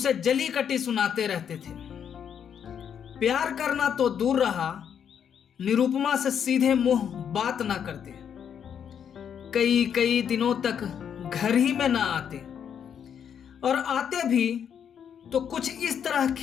जली कटी सुनाते रहते थे। प्यार करना तो दूर रहा, निरुपमा से सीधे मुंह बात ना करते, कई कई दिनों तक घर ही में ना आते, और आते भी तो कुछ इस तरह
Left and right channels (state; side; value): quieter; right; 8.2 dB